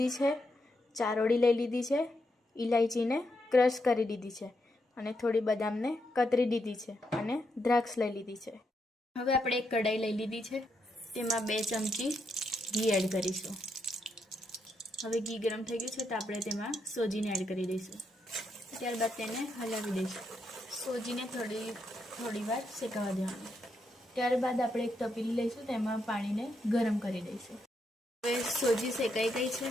છે, ચારોળી લઈ લીધી છે, ઇલાયચીને ક્રશ કરી દીધી છે અને થોડી બદામને કતરી દીધી છે અને દ્રાક્ષ લઈ લીધી છે. હવે આપણે એક કઢાઈ લઈ લીધી છે, તેમાં 2 ચમચી ઘી એડ કરીશું. હવે ઘી ગરમ થઈ ગયું છે તો આપણે તેમાં સોજીને એડ કરી દઈશું. ત્યારબાદ તેને હલાવી દઈશું. સોજીને થોડી વાર શેકાવા દેવાનું. ત્યારબાદ આપણે એક તપેલી લઈશું, તેમાં પાણીને ગરમ કરી દઈશું. હવે સોજી શેકાઈ ગઈ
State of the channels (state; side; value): normal; both; correlation 0.81